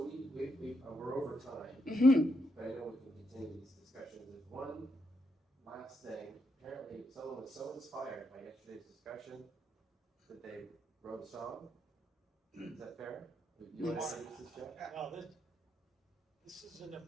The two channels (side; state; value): both; normal; correlation 0.79